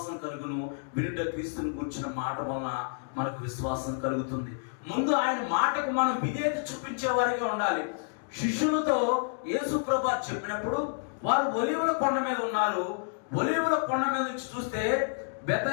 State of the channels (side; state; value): right; silent; digital silence